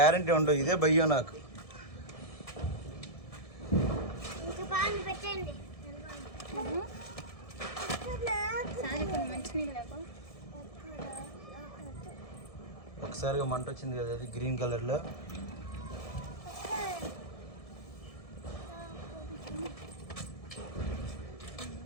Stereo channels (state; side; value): late; right; 1.7 ms